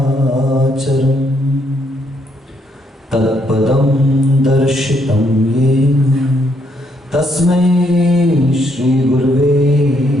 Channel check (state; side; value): normal; both; correlation 0.73